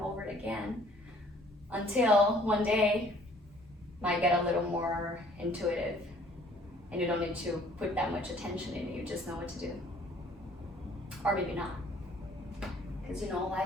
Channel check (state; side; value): normal; both; correlation 0.57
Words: again until one day might get a little more intuitive and you don't need to put that much attention in it, you just know what to do. Or maybe not. Because